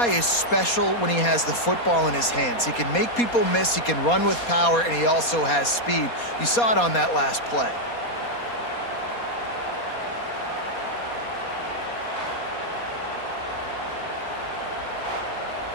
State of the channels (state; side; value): late; right; 4.2 ms